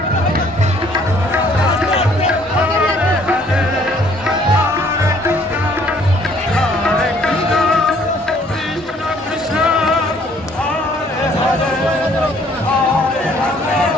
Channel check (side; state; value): both; normal; correlation 0.61